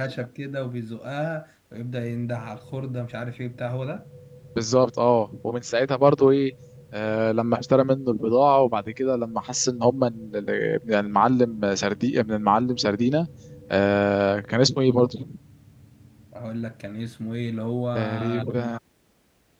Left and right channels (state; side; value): identical; both; correlation 1.00